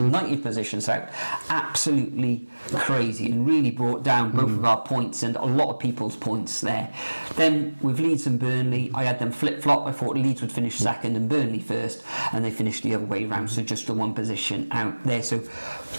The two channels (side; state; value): both; inverted; correlation -1.00